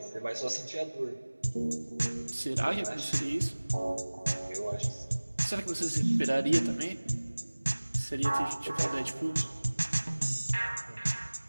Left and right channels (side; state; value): both; inverted; correlation -1.00